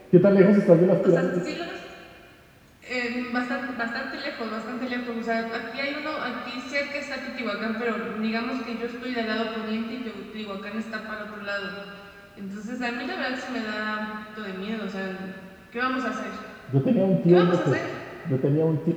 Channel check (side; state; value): both; identical; correlation 1.00